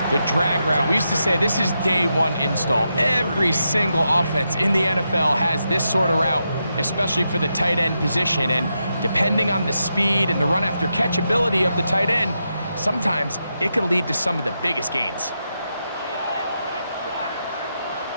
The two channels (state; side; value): inverted; both; correlation -0.85